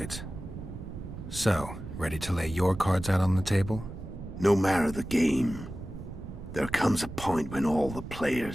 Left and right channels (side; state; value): right; noise; rumble, 11 dB below the sound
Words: So, ready to lay your cards out on the table? No matter the game, there comes a point when all the